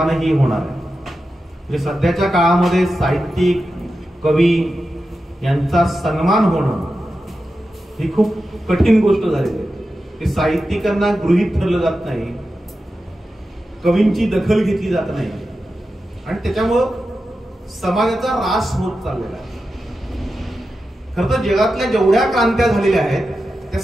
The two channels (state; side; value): normal; both; correlation 0.91